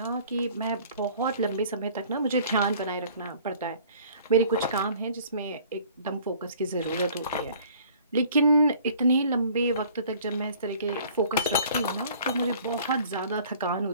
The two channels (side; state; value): both; inverted; correlation -0.51